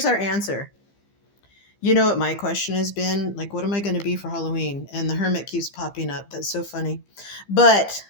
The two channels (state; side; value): late; right; 15 ms